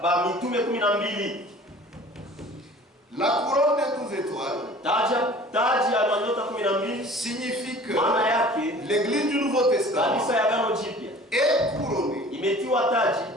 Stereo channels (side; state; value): both; normal; correlation 0.46